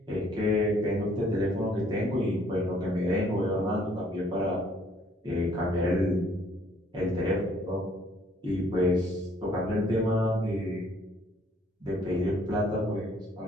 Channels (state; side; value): normal; both; correlation 0.62